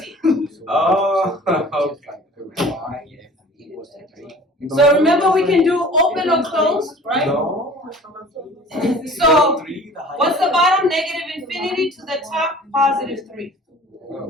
Oh, okay. equals to 3. So remember, we can do open or close, right? No. So, Three, the highest. what's the bottom? Negative infinity to the top, positive 3.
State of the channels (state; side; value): normal; both; correlation 0.45